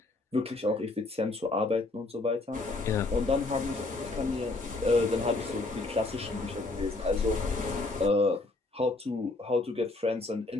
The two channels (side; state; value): right; quieter; 3.2 dB